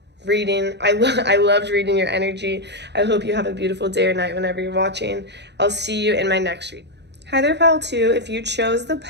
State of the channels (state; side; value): late; left; 0.50 ms